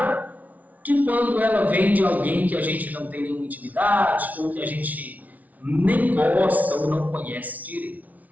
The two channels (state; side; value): late; left; 0.073 ms